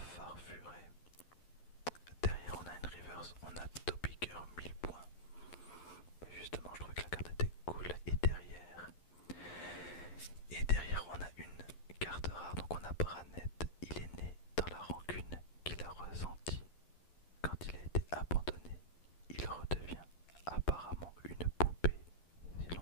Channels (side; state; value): right; late; 11 ms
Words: Farfuret. Derrière on a une reverse, on a Topiger 1000 points. Justement je trouvais que la carte était cool. Et derrière on a une carte rare, donc on a Branette. Il est né dans la rancune qu'il a ressentie quand il a été abandonné. Il redevient apparemment une poupée si